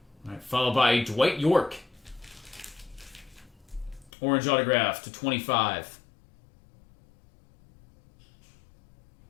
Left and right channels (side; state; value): right; drops out; at 4.1 s